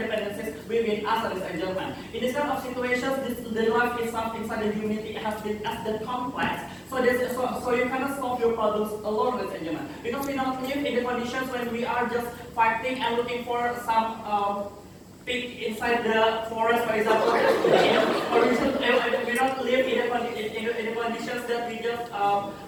within us as a German. In this kind of situations, the life itself inside the humanity has been as the complex. So you cannot solve your problems alone as a German. Because we don't live in the conditions when we are just fighting and looking for some pig inside the forest, for example. Or we don't live in the conditions that we just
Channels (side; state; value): both; identical; correlation 1.00